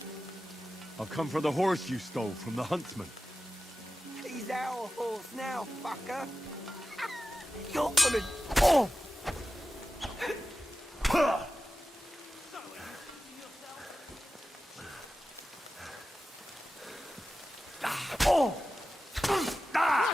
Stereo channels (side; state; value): both; normal; correlation 0.94